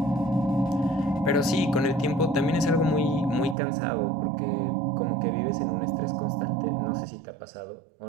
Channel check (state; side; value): drops out; left; at 3.6 s